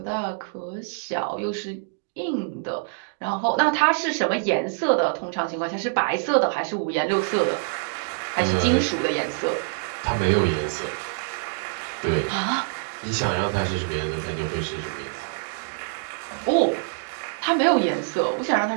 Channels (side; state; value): left; silent; digital silence